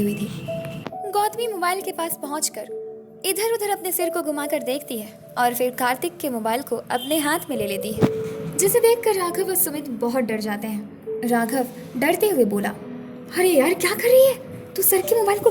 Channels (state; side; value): identical; both; correlation 1.00